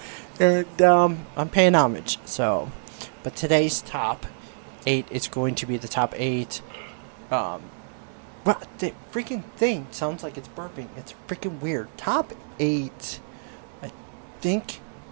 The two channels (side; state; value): left; silent; digital silence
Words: and I'm paying homage. So, but today's top 8 is going to be the top 8. What the freaking thing sounds like it's burping. It's freaking weird. Top 8. I think